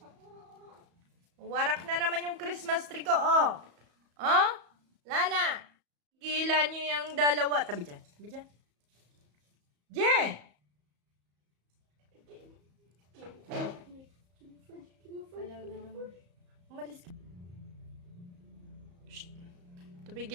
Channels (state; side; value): late; left; 34 ms